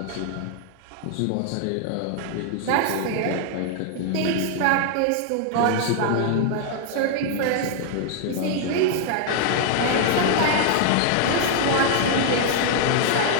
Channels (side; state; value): both; different; correlation 0.00